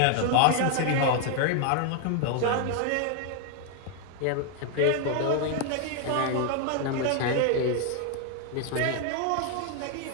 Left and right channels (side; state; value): both; different; correlation 0.00